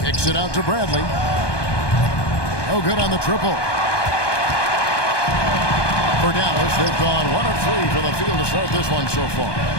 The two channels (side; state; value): right; late; 1.2 ms